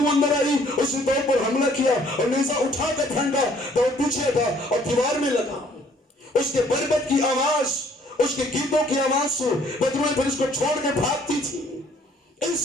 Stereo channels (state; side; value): normal; both; correlation 0.60